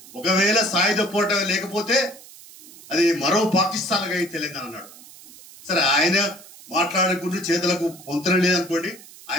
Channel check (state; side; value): noise; right; hiss, 20 dB below the sound